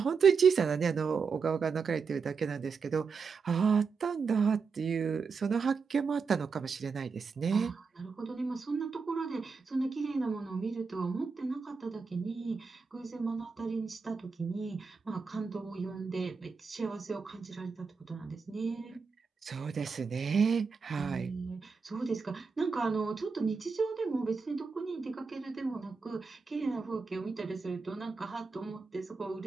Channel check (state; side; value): quieter; left; 5.2 dB